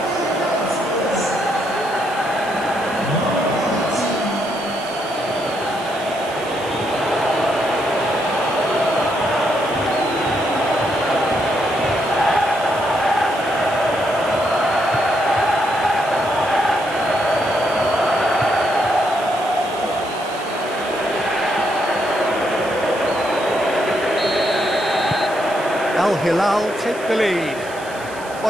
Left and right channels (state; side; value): noise; right; hiss, 18 dB below the sound